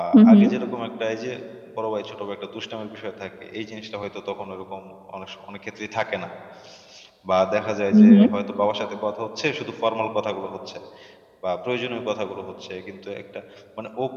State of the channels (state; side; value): identical; both; correlation 1.00